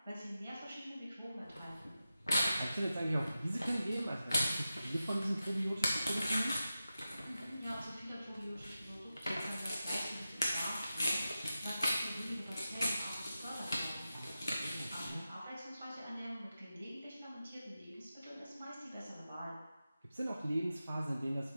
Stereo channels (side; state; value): both; inverted; correlation -0.92